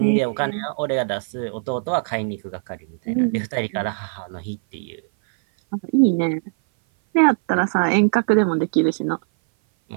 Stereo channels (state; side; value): silent; left; 58 dB below the other